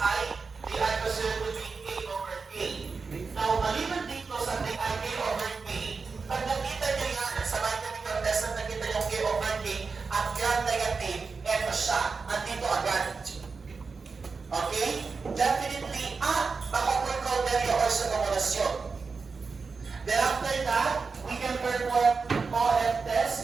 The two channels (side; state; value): left; quieter; 4.7 dB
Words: they are considered to be K over K. Now, maliban dito sa K over K, pag nakita nyo yan sa biochemical test na nakita yung K over K at gram-negative, eto siya, andito agad. Okay? Definitely, baka precautionary or sa kumulasyon. Then after that, we can perform OF